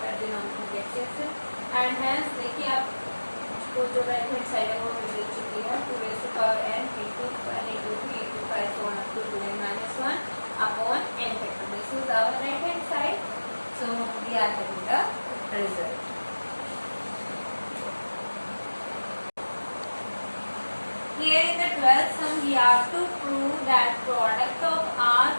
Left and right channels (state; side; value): inverted; both; correlation -1.00